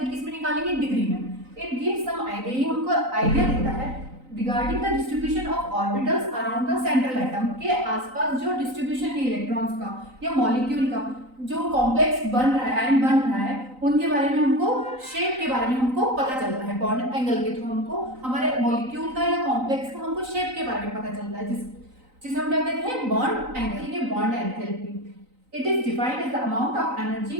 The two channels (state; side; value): late; left; 3.9 ms